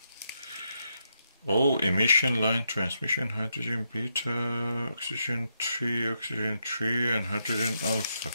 Oh, emission line transmission, hydrogen beta, oxygen 3, and hydrogen alpha.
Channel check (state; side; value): inverted; both; correlation -0.81